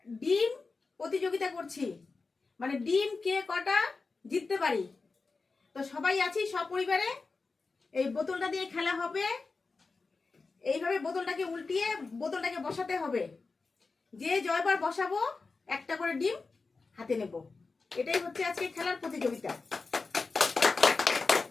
ডিম প্রতিযোগিতা করছি, মানে ডিম কে কটা জিততে পারি। তো সবাই আছি সপরিবারে। এই বোতলটা দিয়ে খেলা হবে। এইভাবে বোতলটাকে উল্টিয়ে বোতলটাকে বসাতে হবে। যে জয়বার বসাবো একটা করে ডিম হাতে নেব। এটাই হচ্ছে আজকে খেলার প্রতিযোগিতা।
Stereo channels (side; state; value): right; quieter; 4.1 dB